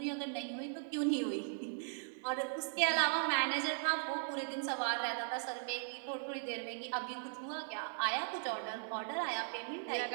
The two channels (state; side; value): silent; left; digital silence